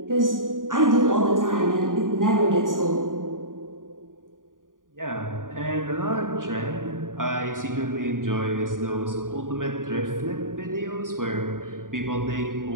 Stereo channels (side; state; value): left; late; 0.89 ms